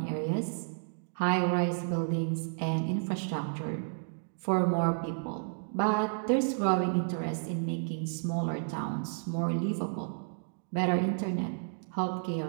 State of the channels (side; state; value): left; silent; digital silence